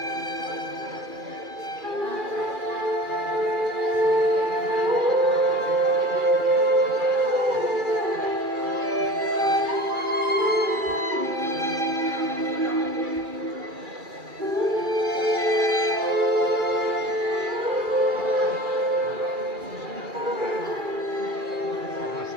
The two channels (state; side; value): late; left; 2.4 ms